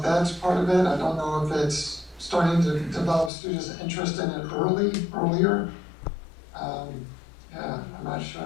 that's part of it. I don't know if it's starting to develop students' interest in it earlier. I'm not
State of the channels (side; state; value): right; drops out; at 3.3 s